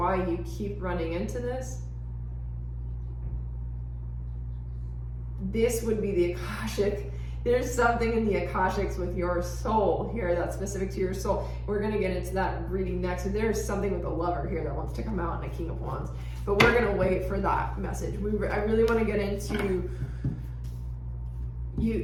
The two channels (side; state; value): both; identical; correlation 1.00